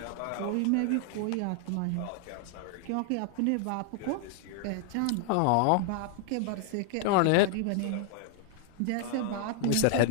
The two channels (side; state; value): both; different; correlation 0.00